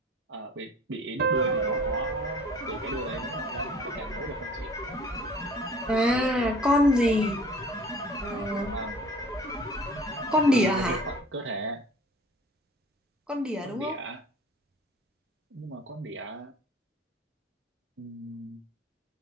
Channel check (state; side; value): normal; both; correlation 0.48